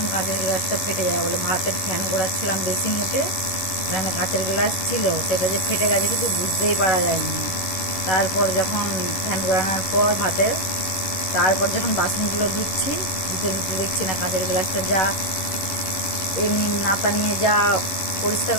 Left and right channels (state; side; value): late; right; 11 ms